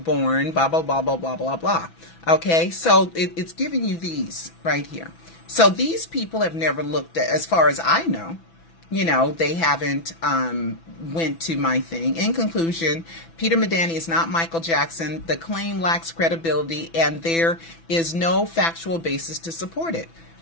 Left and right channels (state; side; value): late; right; 6.0 ms